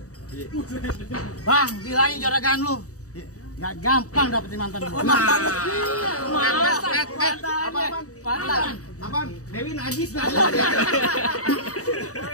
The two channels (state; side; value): late; right; 0.66 ms